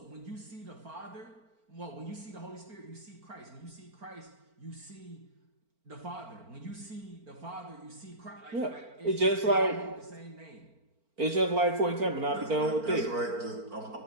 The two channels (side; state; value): left; late; 4.4 ms